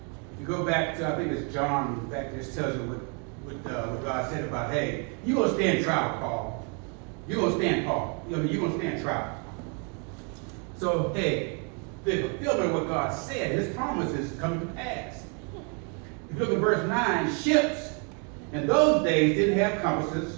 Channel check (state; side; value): quieter; left; 37.0 dB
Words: You go back to, I think it's John, back this tells you what God said about, hey, you're going to stand trial, Paul. You're going to stand, Paul. You're going to stand trial. So, hey, the fulfillment of what God said, his promises come to pass. If you look at verse 9, ships in those days didn't have